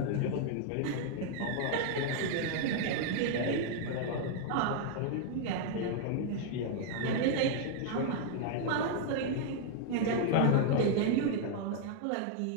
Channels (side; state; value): both; different; correlation 0.00